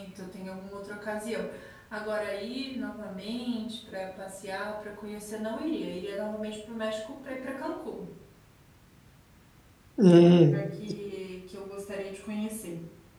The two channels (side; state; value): both; identical; correlation 1.00